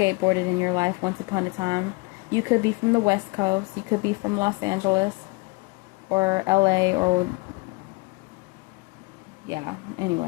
in your life once upon a time. You could be from the West Coast. You could be from Los Angeles or LA or... yeah,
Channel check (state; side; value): quieter; right; 26.8 dB